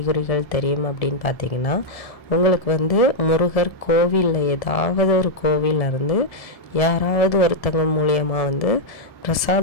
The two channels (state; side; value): late; right; 1.7 ms